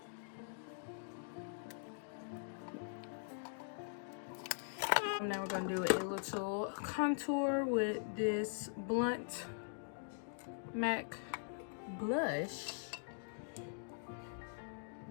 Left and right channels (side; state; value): right; silent; digital silence